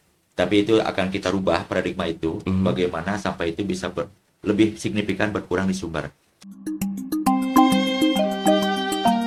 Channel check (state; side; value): identical; both; correlation 1.00